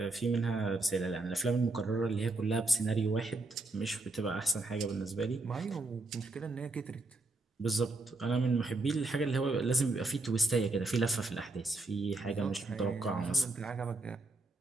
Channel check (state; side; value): quieter; left; 3.1 dB